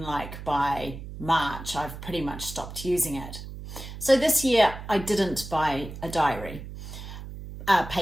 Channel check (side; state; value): right; noise; hum, 11 dB below the sound